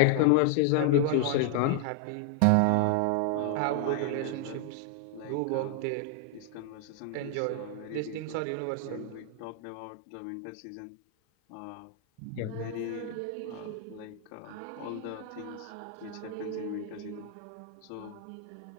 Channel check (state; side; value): different; both; correlation 0.00